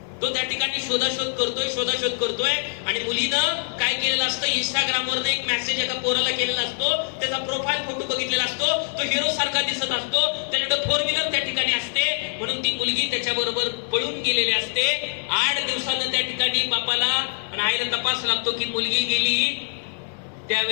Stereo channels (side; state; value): right; silent; digital silence